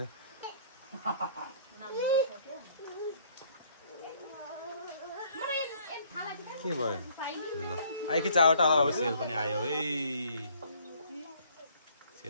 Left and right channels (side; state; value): both; inverted; correlation -0.61